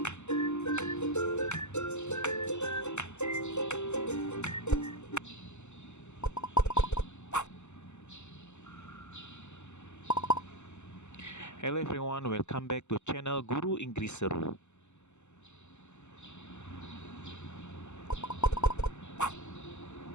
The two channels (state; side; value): late; right; 0.83 ms